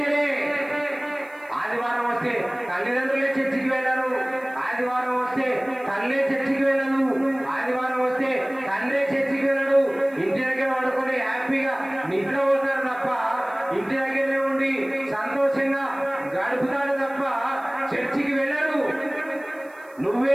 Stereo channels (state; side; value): noise; right; hiss, 29 dB below the sound